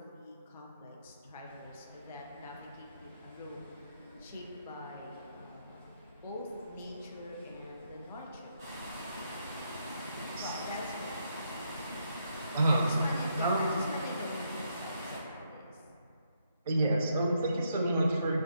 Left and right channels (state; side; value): inverted; both; correlation -0.77